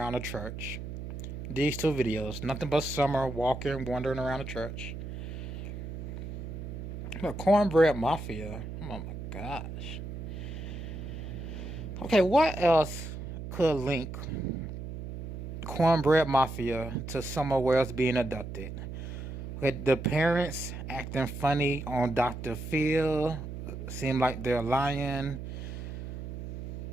the church. These two videos, nothing but Summer walking, wandering around the church. The Cornbread Mafia. Oh my gosh. Okay, what else could link Cornbread Mafia to somewhere else being abducted? With the parents acting funny on Dr. Phil, seem like they're lying.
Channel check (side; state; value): right; noise; hum, 8 dB below the sound